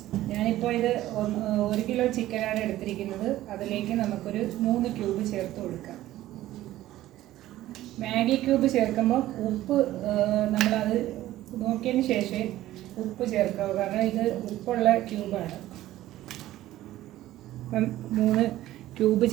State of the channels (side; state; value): left; quieter; 14.8 dB